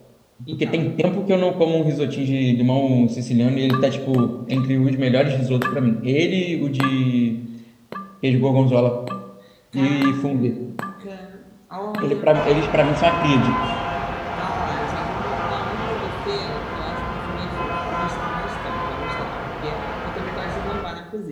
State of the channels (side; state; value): both; identical; correlation 1.00